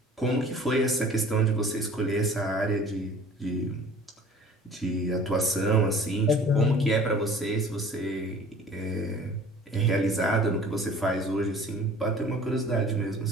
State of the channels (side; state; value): both; normal; correlation 0.47